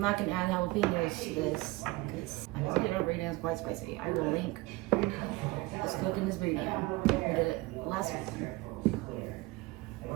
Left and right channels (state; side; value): quieter; left; 21.3 dB